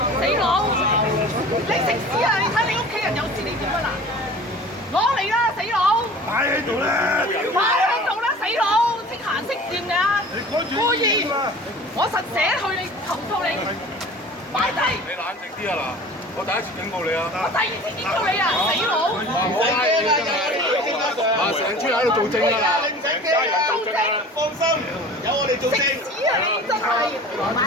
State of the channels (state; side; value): normal; both; correlation 0.42